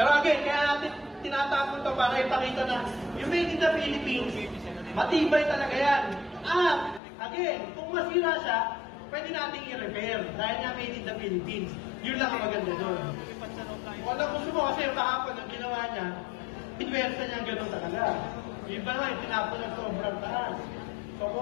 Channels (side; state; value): right; drops out; at 7.0 s